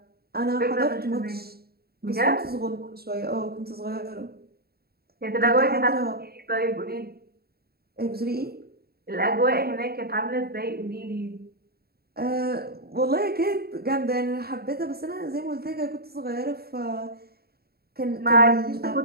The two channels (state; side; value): late; left; 0.45 ms